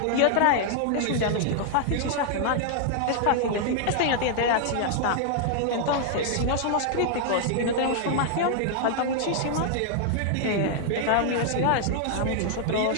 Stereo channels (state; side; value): different; both; correlation 0.00